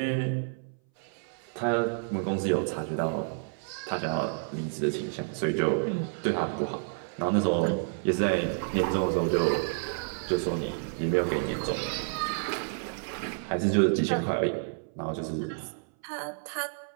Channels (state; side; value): silent; left; 58 dB below the other